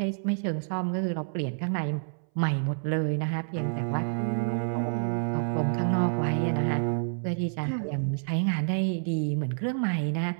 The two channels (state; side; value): silent; left; 59 dB below the other